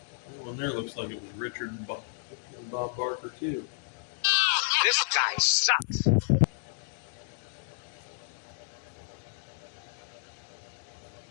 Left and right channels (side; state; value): right; silent; digital silence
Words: one there looks like it was Richard and Bob Barker too. This guy sucks.